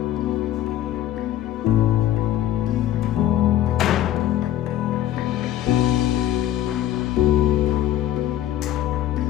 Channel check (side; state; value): right; quieter; 12.8 dB